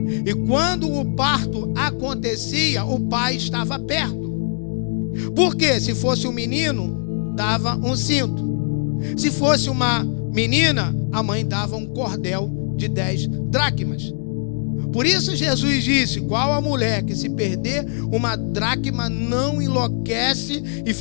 E quando o parto acontecia, o pai estava perto. Porque se fosse um menino, dava um cinto. Se fosse uma menina, a mãe dava um cordel de 10 dracmas. Por isso Jesus disse: qual a mulher que se perder uma dracma não enlouquece e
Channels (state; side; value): silent; right; 56 dB below the other